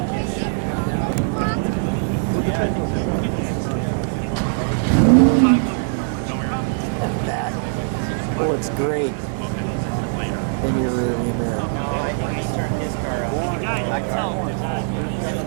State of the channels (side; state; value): left; silent; 65 dB below the other